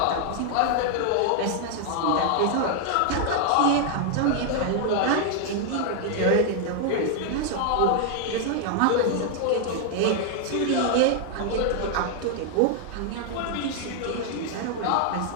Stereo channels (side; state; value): both; different; correlation 0.00